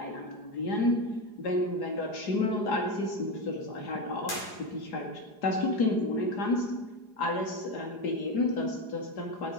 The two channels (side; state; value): right; late; 4.8 ms